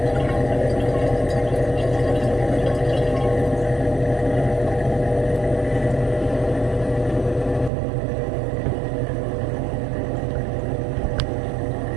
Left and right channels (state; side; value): drops out; left; at 7.7 s